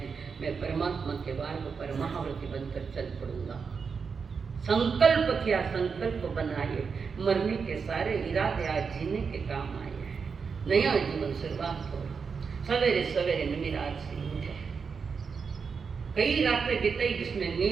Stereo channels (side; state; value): left; quieter; 5.6 dB